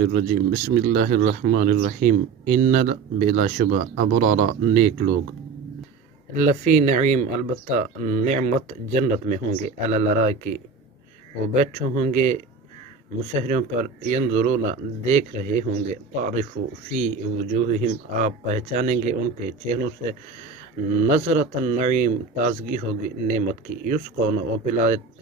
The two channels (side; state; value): left; quieter; 4.9 dB